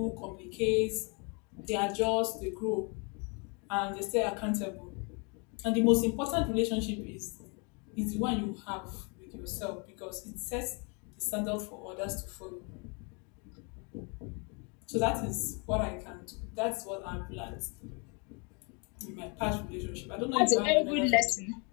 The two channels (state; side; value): quieter; right; 33.8 dB